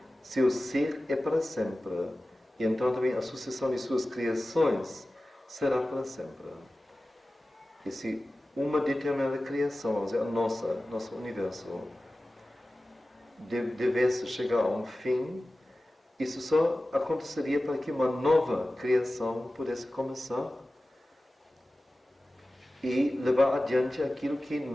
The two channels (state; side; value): normal; both; correlation 0.96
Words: seu ser é para sempre. E então também a sucessão de suas criações será para sempre. E se uma determinada criação, vamos dizer, a nosso universo, devesse chegar a um fim, isso só aconteceria para que uma nova criação pudesse começar e levar adiante aquilo que